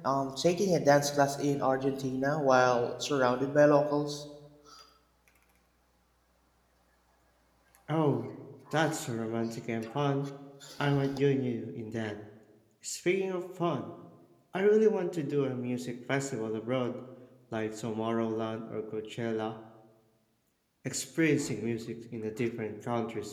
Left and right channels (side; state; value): both; identical; correlation 1.00